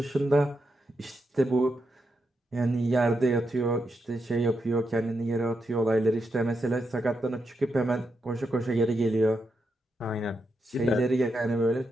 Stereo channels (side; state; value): both; normal; correlation 0.84